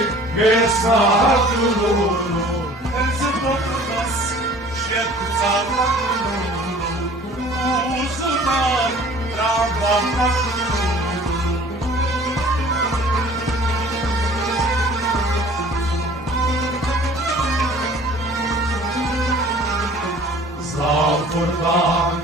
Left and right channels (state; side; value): normal; both; correlation 0.49